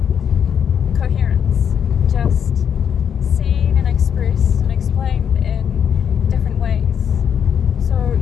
coherence, just seen and expressed and explained in different ways. So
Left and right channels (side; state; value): right; quieter; 8.1 dB